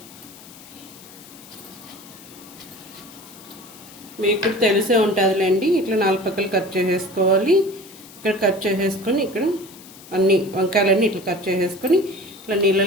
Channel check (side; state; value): left; noise; hiss, 20 dB below the sound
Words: మీకు తెలిసే ఉంటుందిలేండి. ఇట్లా 4 పక్కలు కట్ చేసేసుకోవాలి. ఇక్కడ కట్ చేసేసుకొని ఇక్కడ అన్ని వంకాయలన్నీ ఇట్లా కట్ చేసేసుకొని ఇట్లా